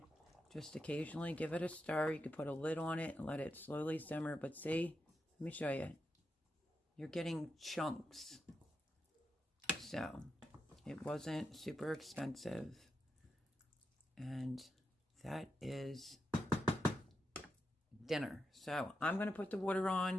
Just occasionally give it a stir. You could put a lid on it and let it slowly simmer. But see, let me show you. You're getting chunks. So, it wasn't super expensive. And that is dinner. So, I'm going to put the water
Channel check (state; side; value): normal; both; correlation 0.86